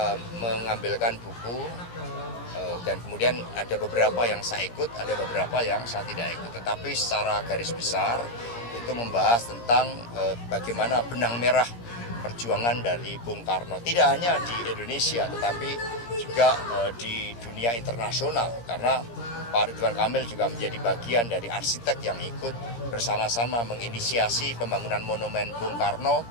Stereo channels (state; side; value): late; right; 17 ms